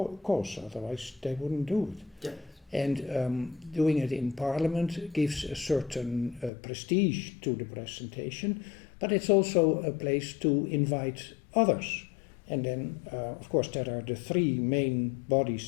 otherwise they wouldn't do it. Yeah. And doing it in parliament gives a certain prestige to the presentation, but it's also a place to invite others. And then, of course, there are the 3 main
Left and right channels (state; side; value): drops out; right; at 6.5 s